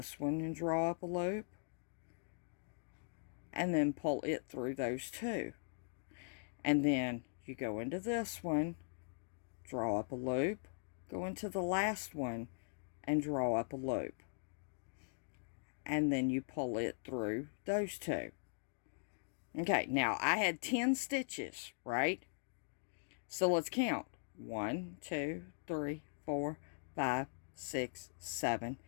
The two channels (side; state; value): right; silent; digital silence